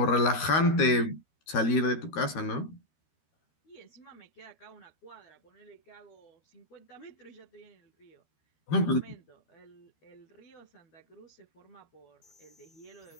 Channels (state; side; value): late; right; 13 ms